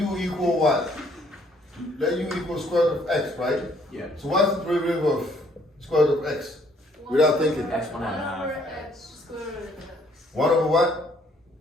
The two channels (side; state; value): both; normal; correlation 0.64